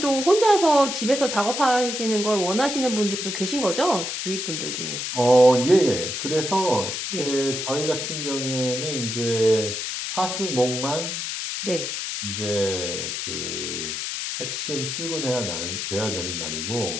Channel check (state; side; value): noise; left; hiss, 4 dB below the sound